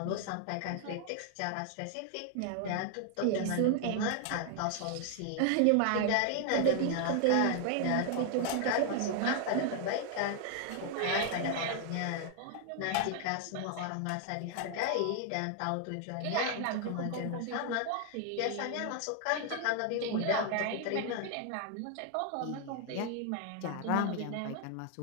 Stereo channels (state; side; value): different; both; correlation 0.00